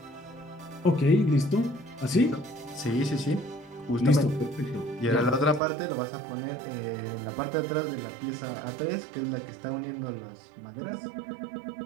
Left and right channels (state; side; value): drops out; left; at 5.6 s